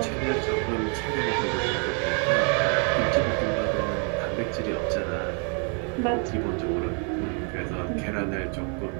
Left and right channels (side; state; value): left; quieter; 39.0 dB